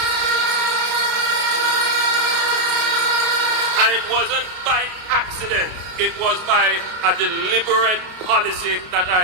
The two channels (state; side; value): late; left; 33 ms